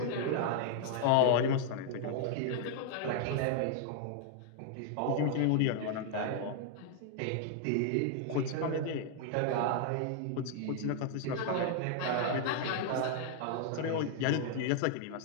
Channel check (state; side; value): different; both; correlation 0.00